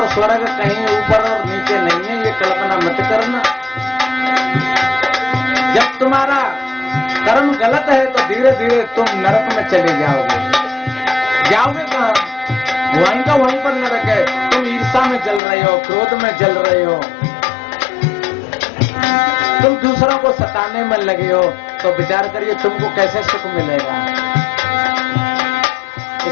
स्वर्ग कहीं ऊपर और नीचे नहीं है, ये कल्पना मत करना। जब तुम्हारा कर्म गलत है तो धीरे धीरे तुम नरक में चले जाओगे। जाओगे कहाँ? वहीं का वहीं पर नरक है। तुम ईर्ष्या में जल रहे हो, क्रोध में जल रहे हो, तुम दूसरों को सताने में लगे हो, तो विचार करिए तुमको कैसे सुख मिलेगा।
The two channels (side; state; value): right; drops out; at 15.4 s